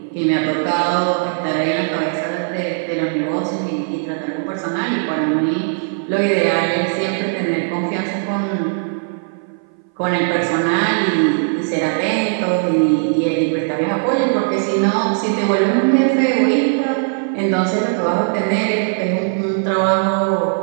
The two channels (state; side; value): silent; left; 60 dB below the other